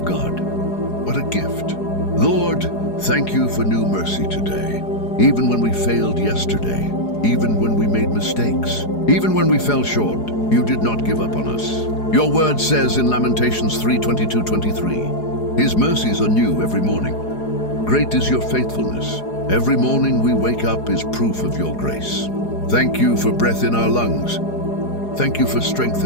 God. What a gift. Lord, thank you for new mercy today. Even when we failed yesterday, even when we made mistakes, even when we fell short, you did not give up on us. Your word says in Lamentations 3:22-23, his mercies are new every morning. Great is your faithfulness. Every morning we wake up is proof of your grace. Thank you for breath in our lungs. Thank you for strength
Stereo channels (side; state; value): right; late; 4.8 ms